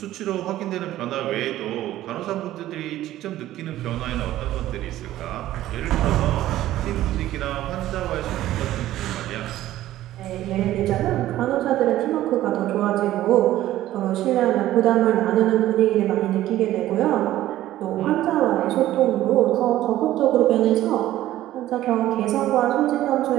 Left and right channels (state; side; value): quieter; left; 14.2 dB